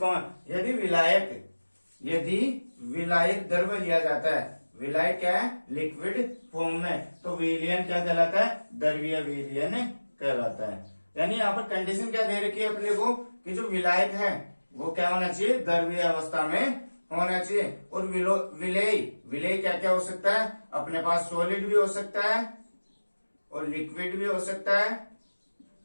यदि विलायक द्रव लिया जाता है, विलायक क्या है? लिक्विड फॉर्म में, तो विलयन क्या कहलाता है? द्रवीय विलयन कहलाता है। यानी यहाँ पर कंडीशन क्या दे रखी है अपने को कि जो विलायक है वो क्या होना चाहिए? द्रवीय अवस्था में होना चाहिए। और विलेय विलेय क्या क्या हो सकता है? अपने पास सॉलिड भी हो सकता है और लिक्विड भी हो सकता है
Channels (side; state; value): both; inverted; correlation -1.00